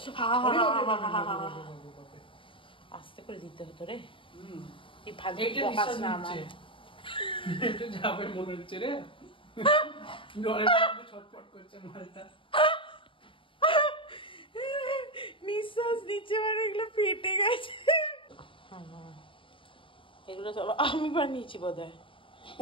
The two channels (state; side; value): late; right; 0.25 ms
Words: আস্তে করে দিতে হতো রে। এই এইটা নিঃশ্বাস নিচ্ছে, এটা যাবে মনে হচ্ছে রে। জলের মধ্যে ছটফট করছে মালটা। নিঃশ্বাস নিচ্ছে মানে এগুলো ফেটে গেছে। এগুলো সব আমি বানিয়েছি বোধহয়।